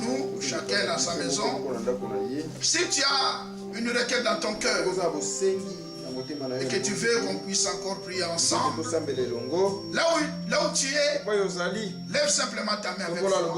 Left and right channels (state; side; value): identical; both; correlation 1.00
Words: chacun dans sa maison. Si tu as une requête dans ton cœur et que tu veux qu'on puisse encore prier ensemble, là où tu es, lève simplement ta main avec foi.